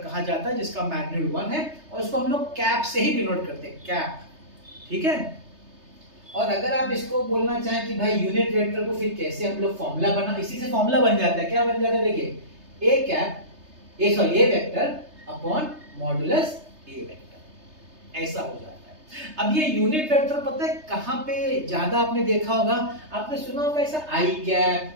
जाता है जिसका मैग्नीट्यूड 1 है, और उसको हम लोग कैप से ही डिनोट करते हैं, कैप। ठीक है। और अगर आप इसको बोलना चाहें कि भाई यूनिट वेक्टर को फिर कैसे हम लोग फॉर्मूला बना, इसी से फॉर्मूला बन जाता है। क्या बन जाता है? देखिए a cap a vector upon modulus a vector, ऐसा हो जाता है। अब ये यूनिट वेक्टर पता है कहां पे ज्यादा आपने देखा होगा? आपने सुना होगा ऐसा आई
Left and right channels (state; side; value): late; left; 3.3 ms